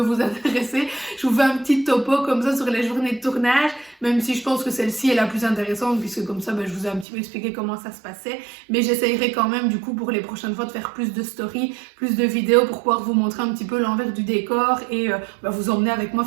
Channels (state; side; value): drops out; left; at 7.1 s